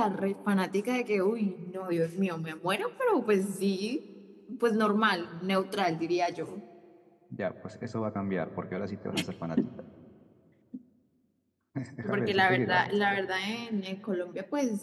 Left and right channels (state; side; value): identical; both; correlation 1.00